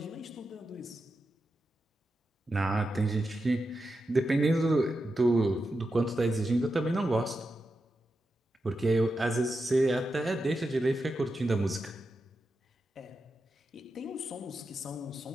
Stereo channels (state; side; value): normal; both; correlation 0.89